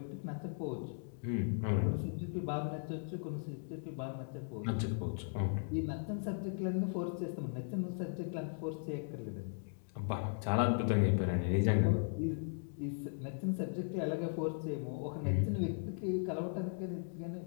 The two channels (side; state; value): right; silent; digital silence